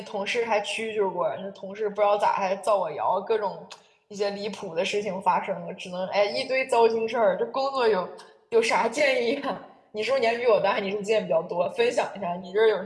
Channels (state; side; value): identical; both; correlation 1.00